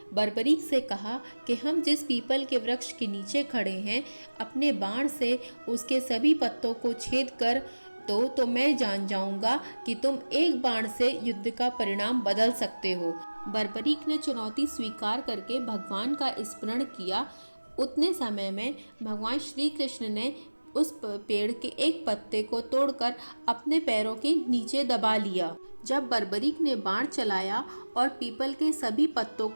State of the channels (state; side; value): inverted; both; correlation -1.00